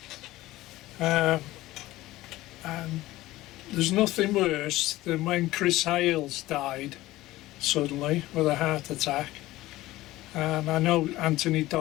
and there's nothing worse than when Chris Hales died suddenly with a heart attack. And I know Anthony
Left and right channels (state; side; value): quieter; right; 17.2 dB